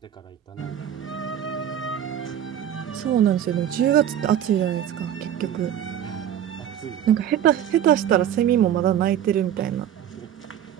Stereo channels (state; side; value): quieter; left; 10.3 dB